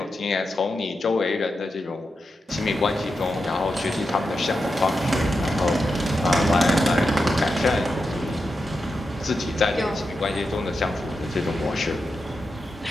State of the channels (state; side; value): normal; both; correlation 0.88